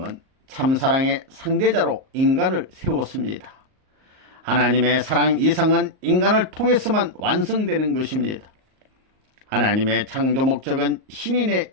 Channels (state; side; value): late; left; 38 ms